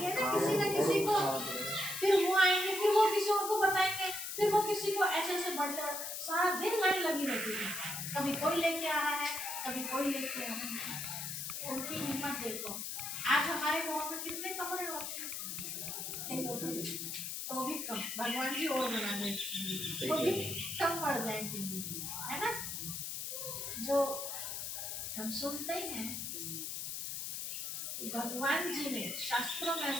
ना किसी को, फिर वो आएंगे, फिर वो किसी और को बताएंगे, फिर वो किसी को, ऐसे बढ़ते सारा दिन लाइन लगी रहती है। कभी कोई लेके आ रहा है, कभी कोई लेके आ रहा है। उनकी हिम्मत देखो। आज हमारे गाँव में कितने कमरे होते हैं, तो भी कम, भगवान जी और बना दे तो भी कम पड़ जाएंगे, है ना। जो हम सुनते हैं भगवान जी ने शास्त्रों में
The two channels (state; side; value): noise; left; hiss, 5 dB below the sound